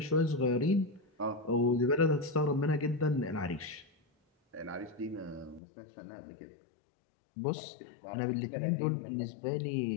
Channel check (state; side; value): drops out; right; at 5.6 s